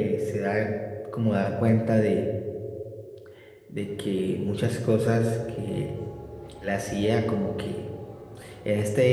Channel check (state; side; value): identical; both; correlation 1.00